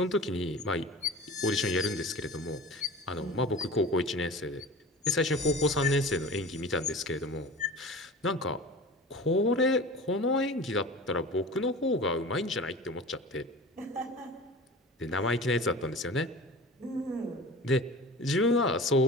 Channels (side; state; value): both; normal; correlation 0.37